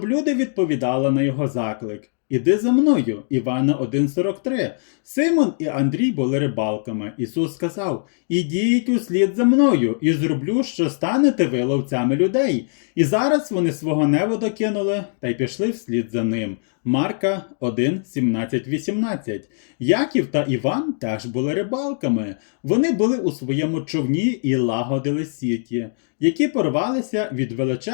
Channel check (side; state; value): right; silent; digital silence